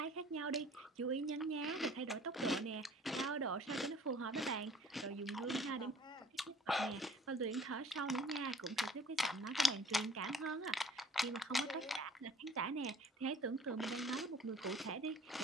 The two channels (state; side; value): normal; both; correlation 0.52